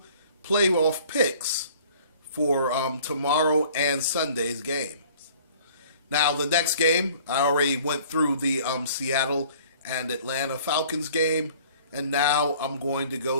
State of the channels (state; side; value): inverted; both; correlation -0.52